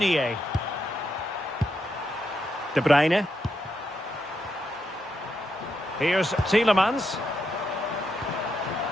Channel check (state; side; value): normal; both; correlation 0.82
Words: De Bruyne. Here's Tielemans.